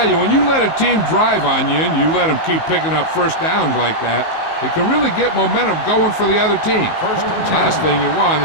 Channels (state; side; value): late; right; 19 ms